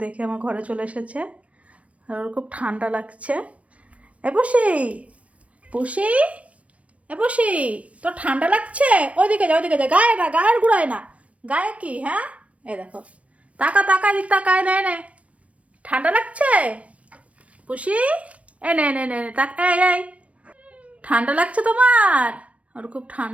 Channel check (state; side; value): late; left; 0.064 ms